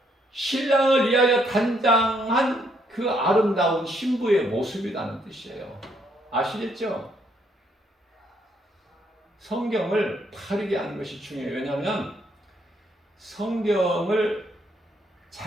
신랑을 위하여 단장한 그 아름다운 신부의 모습이라는 뜻이에요. 아시겠죠? 성경을 바르게 아는 것이 중요해요. 왜냐하면 성경을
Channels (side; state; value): both; normal; correlation 0.71